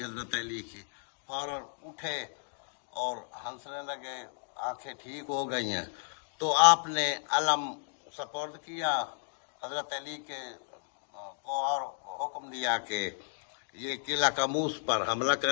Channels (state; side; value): silent; right; digital silence